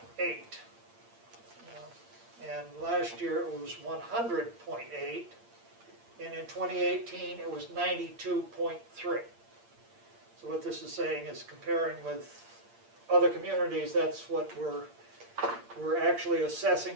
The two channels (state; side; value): late; left; 8.7 ms